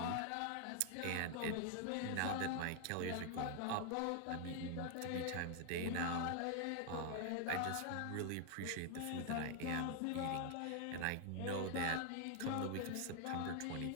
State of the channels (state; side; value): different; both; correlation 0.00